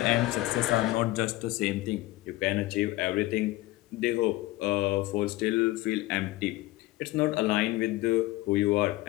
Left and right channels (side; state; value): right; quieter; 18.4 dB